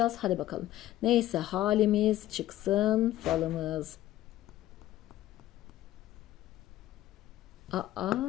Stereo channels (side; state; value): right; quieter; 14.2 dB